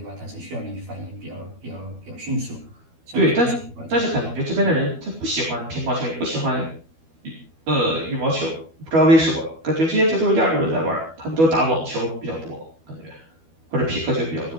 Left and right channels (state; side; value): late; left; 12 ms